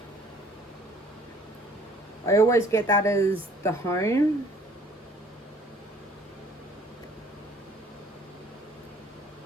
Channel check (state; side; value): normal; both; correlation 0.56